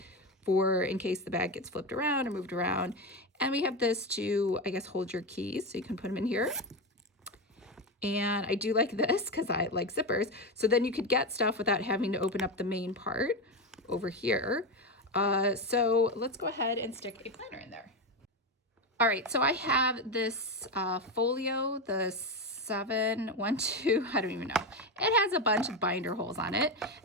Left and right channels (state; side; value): normal; both; correlation 0.15